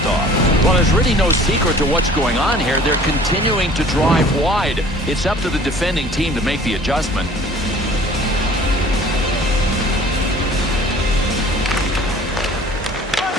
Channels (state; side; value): normal; both; correlation 0.50